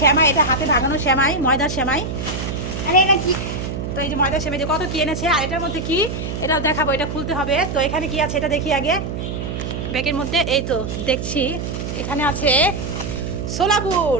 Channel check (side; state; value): right; noise; hum, 5 dB below the sound